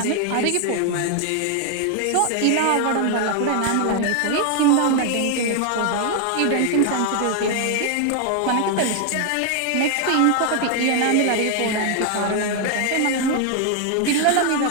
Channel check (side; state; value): both; different; correlation 0.00